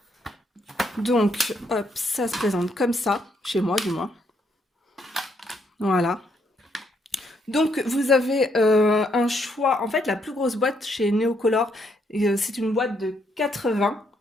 Donc, hop, ça se présente comme ça, chez moi du moins. Voilà. Donc, vous avez un choix. En fait, la plus grosse boîte chez Neocolor, c'est une boîte de 80.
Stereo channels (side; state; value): both; normal; correlation 0.74